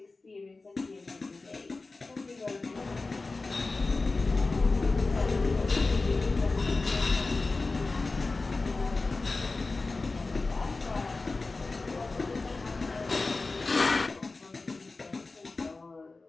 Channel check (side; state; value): right; quieter; 3.6 dB